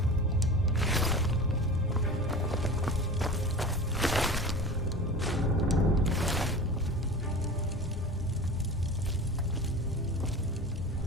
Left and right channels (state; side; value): normal; both; correlation 0.34